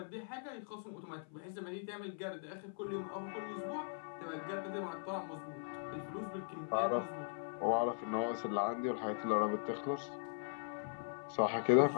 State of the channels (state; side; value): silent; right; 51 dB below the other